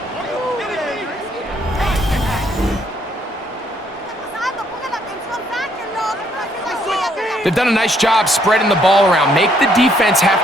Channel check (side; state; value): both; normal; correlation 0.69